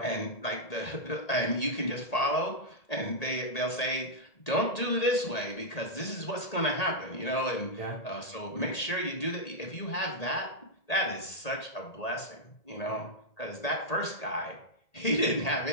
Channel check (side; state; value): right; late; 1.8 ms